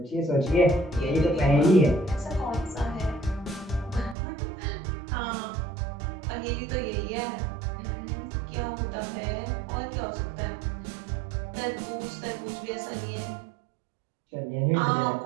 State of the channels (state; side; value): drops out; left; at 4.2 s